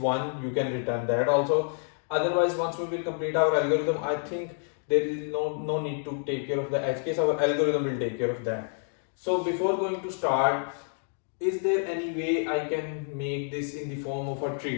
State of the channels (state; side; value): silent; right; 58 dB below the other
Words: you can return that also. Otherwise, once we will complete our algorithm, I think there is no need to take care of the edge case. Our algorithm will take care of that. So before going to start, is there any way I can make this in the form of a